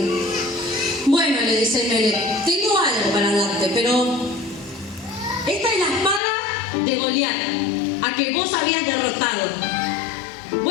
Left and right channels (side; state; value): right; drops out; at 6.2 s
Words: Bueno, le dice Ahimelech, tengo algo para darte, pero esta es la espada de Goliat, a que vos habías derrotado.